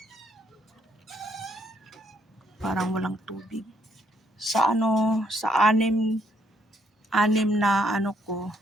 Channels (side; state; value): both; normal; correlation 0.72